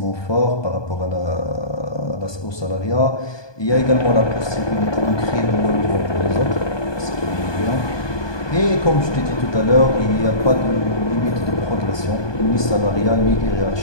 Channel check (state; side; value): late; right; 1.2 ms